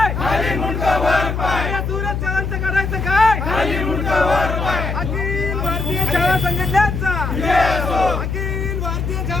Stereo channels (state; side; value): noise; left; hum, 2 dB below the sound